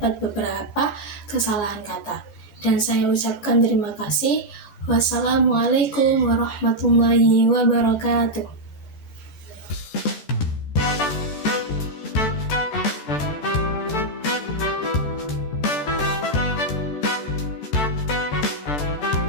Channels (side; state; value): right; late; 14 ms